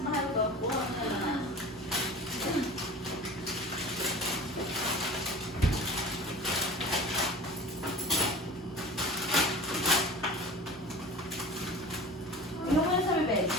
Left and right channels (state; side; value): normal; both; correlation 0.38